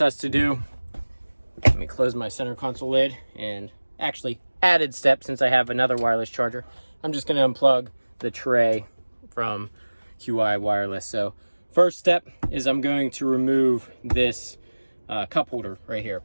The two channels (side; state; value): both; inverted; correlation -1.00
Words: us to do, let me close my center console lid, and actually added step since I have another wireless charger, I'm just going to unplug the tray from QI Wireless. So first step is I'm going to remove this cup holder right here,